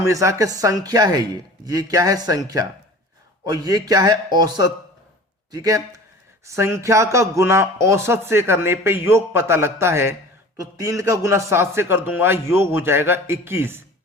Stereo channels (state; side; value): normal; both; correlation 0.42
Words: कि संख्या है ये क्या है? संख्या। और ये क्या है? औसत। ठीक है, संख्या का गुना औसत से करने पे योग पता लगता है। तो 3 का गुना 7 से कर दूंगा, योग हो जाएगा 21।